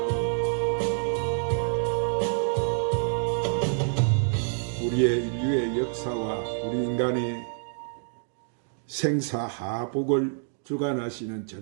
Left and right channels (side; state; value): left; silent; digital silence